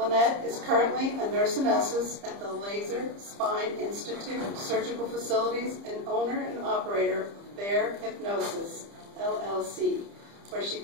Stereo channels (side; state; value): left; late; 30 ms